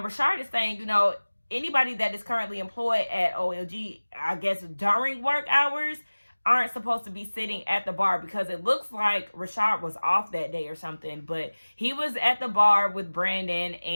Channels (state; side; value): inverted; both; correlation -1.00